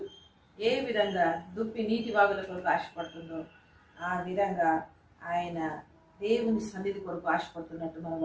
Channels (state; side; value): identical; both; correlation 1.00